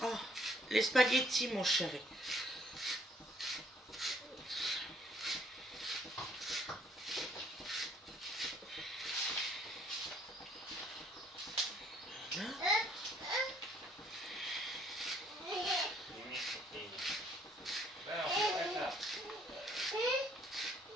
les spaghettis, mon chéri.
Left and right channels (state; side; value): normal; both; correlation 0.64